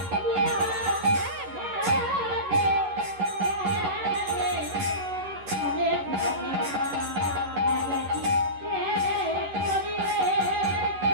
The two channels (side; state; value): left; late; 11 ms